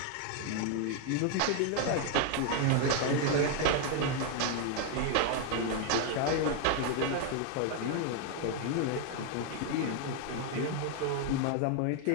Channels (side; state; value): both; different; correlation 0.01